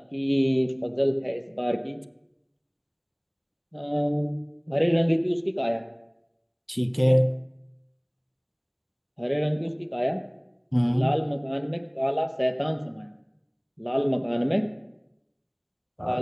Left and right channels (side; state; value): both; identical; correlation 1.00